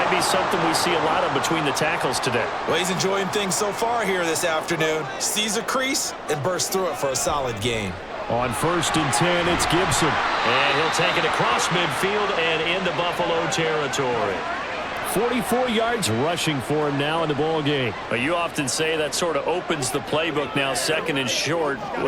be something we see a lot of between the tackles today. Well, he's enjoying things so far here this afternoon. Sees a crease and bursts through it for a solid gain. On 1st and 10, it's Gibson. And he'll take it across midfield and into Buffalo territory. 44 yards rushing for him now in the ball game. But you often say that sort of opens the playbook now, 2nd and short.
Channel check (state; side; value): identical; both; correlation 1.00